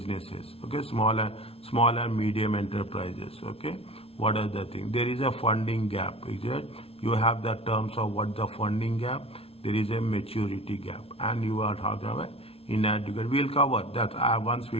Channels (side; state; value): right; late; 0.28 ms